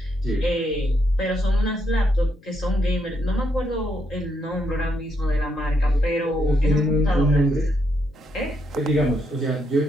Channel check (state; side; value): noise; left; hum, 28 dB below the sound